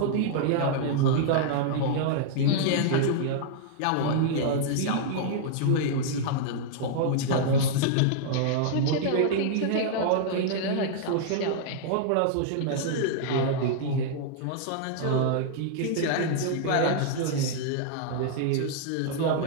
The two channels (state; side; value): different; both; correlation -0.01